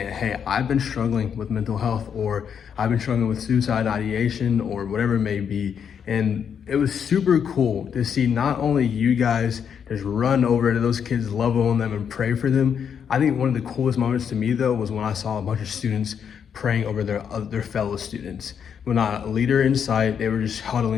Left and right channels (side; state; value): right; quieter; 7.6 dB